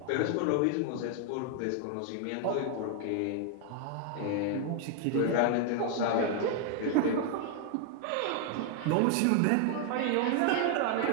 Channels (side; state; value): both; different; correlation 0.00